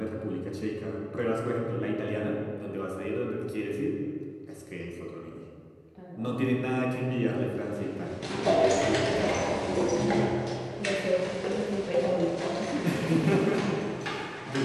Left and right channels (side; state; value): both; identical; correlation 1.00